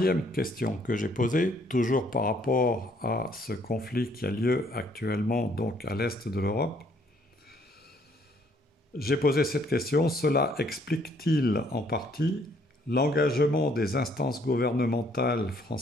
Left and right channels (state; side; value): normal; both; correlation 0.65